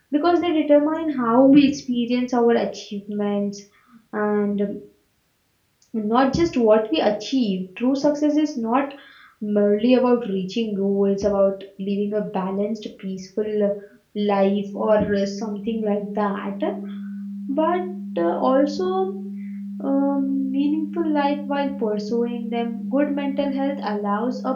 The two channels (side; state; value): both; identical; correlation 1.00